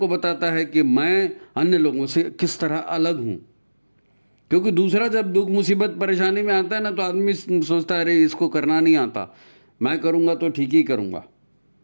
बताता है कि मैं अन्य लोगों से किस तरह अलग हूँ। क्योंकि दूसरा जब दुख मुसीबत परेशानी में आता है ना, तो आदमी सोचता है अरे इसको करना नहीं आता, मैं करूँगा तो ठीक ही करूँगा,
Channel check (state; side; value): inverted; both; correlation -1.00